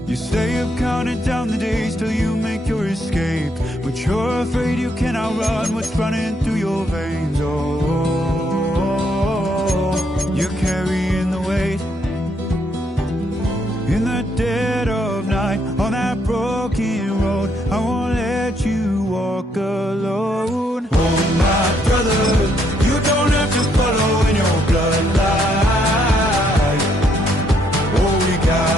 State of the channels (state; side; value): normal; both; correlation 0.73